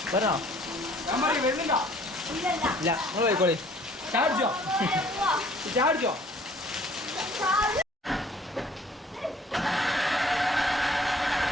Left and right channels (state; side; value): normal; both; correlation 0.56